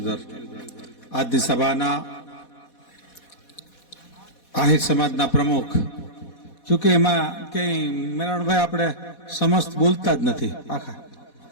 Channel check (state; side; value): late; right; 4.1 ms